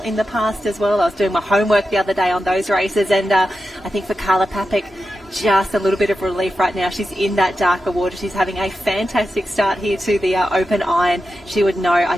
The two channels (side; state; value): both; normal; correlation 0.90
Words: the past as well. I was doing my homework the other day on those races. And I think for Carla Papik, just a little bit of relief right now. She's in that darker water. She's having a fantastic start here to the Open Iron. She would know, I